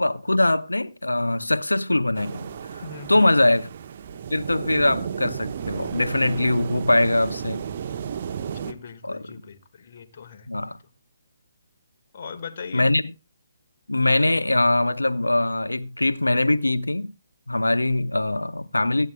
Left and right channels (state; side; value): inverted; both; correlation -0.97